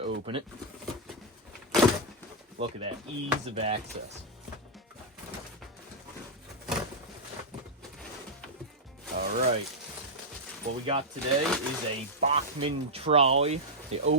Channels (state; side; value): normal; both; correlation -0.04